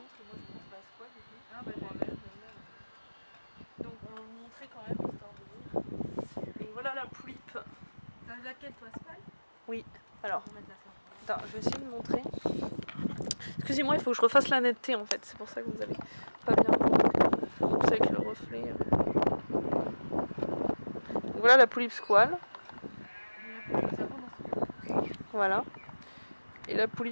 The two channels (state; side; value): inverted; both; correlation -1.00